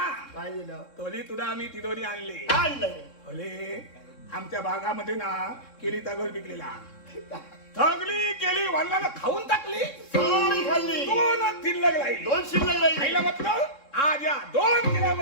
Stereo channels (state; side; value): late; right; 3.7 ms